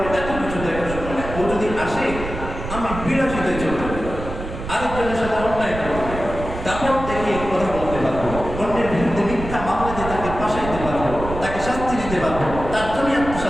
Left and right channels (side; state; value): right; noise; rumble, 8 dB below the sound